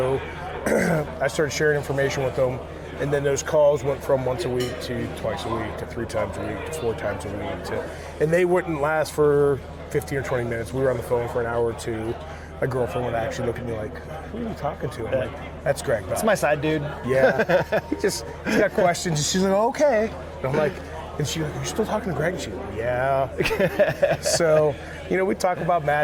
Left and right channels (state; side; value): identical; both; correlation 1.00